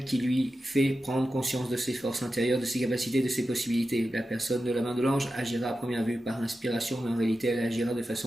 qui lui fait prendre conscience de ses forces intérieures, de ses capacités, de ses possibilités. La personne de la main de l'ange agira à première vue par inspiration, mais en réalité elle agira de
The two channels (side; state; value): both; normal; correlation 0.91